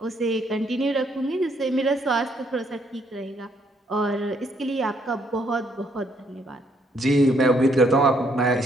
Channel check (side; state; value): both; normal; correlation 0.70